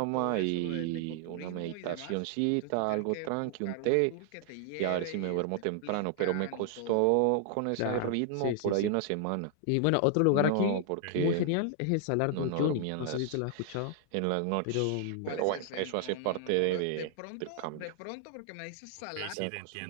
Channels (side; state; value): both; different; correlation 0.00